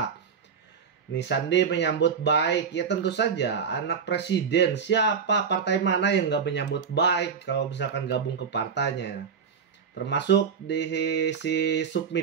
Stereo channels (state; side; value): quieter; left; 6.5 dB